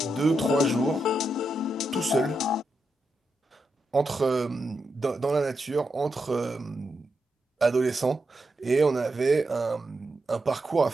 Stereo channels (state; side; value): normal; both; correlation 0.85